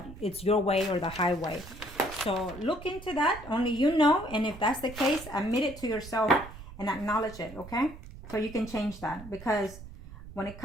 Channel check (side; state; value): right; noise; rumble, 15 dB below the sound